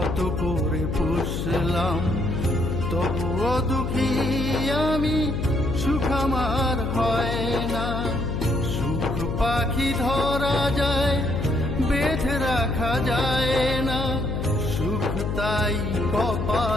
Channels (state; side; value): noise; left; hum, 2 dB below the sound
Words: করে পুষলাম, তবুও দুঃখী আমি, সুখ আমার হয় না। সুখ পাখি ধরা যায়, বেঁধে রাখা যায় না, সুখ তাই